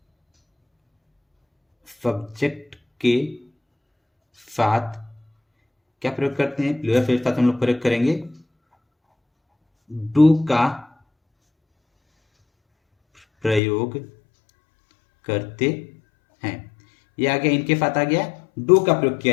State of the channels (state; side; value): drops out; right; at 13.6 s